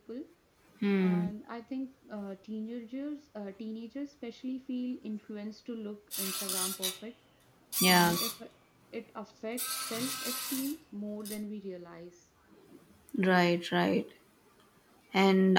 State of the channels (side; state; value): both; identical; correlation 1.00